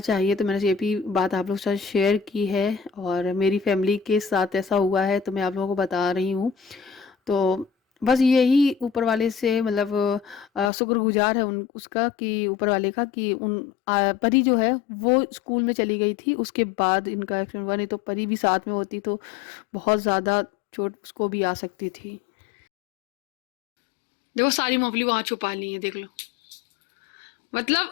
तो मैंने ये भी बात आप लोगों के साथ शेयर की है, और मेरी फैमिली के साथ ऐसा हुआ है तो मैं आप लोगों को बता रही हूँ। तो बस यही ऊपर वाले से मतलब शुक्रगुजार है उसका, कि ऊपर वाले का, कि परी जो है वो स्कूल में चली गई थी, उसके बाद इनका एक्सीडेंट हुआ। नहीं तो परी भी साथ में होती तो बहुत ज़्यादा चोट उसको भी आ सकती थी। देखो सारी मूंगफली वहां छुपा ली है, देख लो।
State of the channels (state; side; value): drops out; right; at 10.7 s